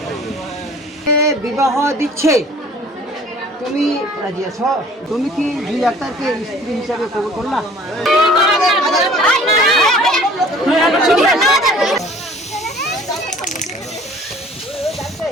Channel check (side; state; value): both; normal; correlation 0.50